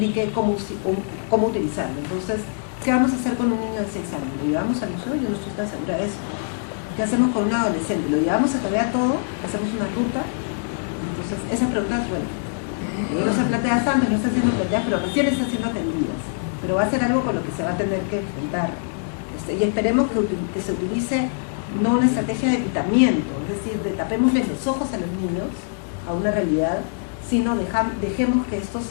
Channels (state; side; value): silent; right; digital silence